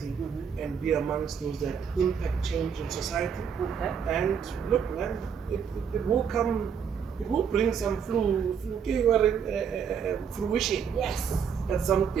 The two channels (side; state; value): left; quieter; 7.2 dB